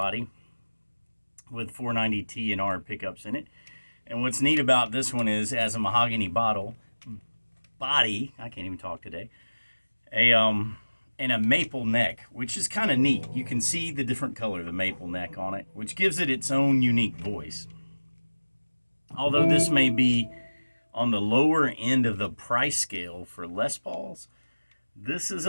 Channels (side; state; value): both; inverted; correlation -1.00